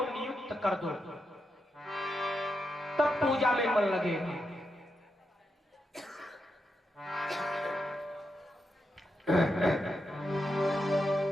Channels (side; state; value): both; normal; correlation 0.85